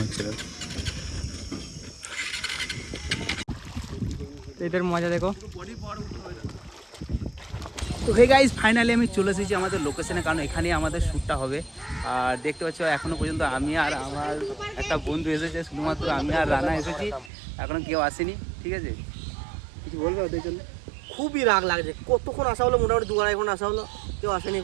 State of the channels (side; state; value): left; drops out; at 17.3 s